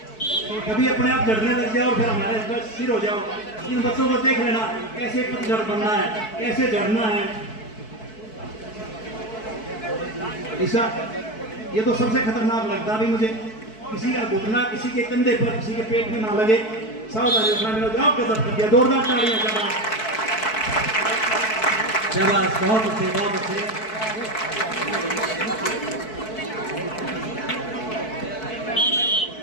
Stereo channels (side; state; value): right; late; 4.6 ms